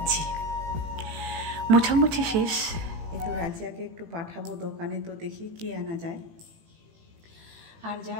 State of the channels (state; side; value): late; left; 18 ms